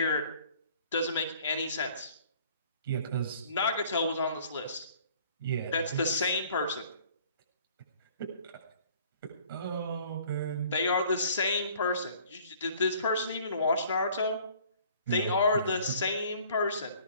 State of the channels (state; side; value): inverted; both; correlation -0.54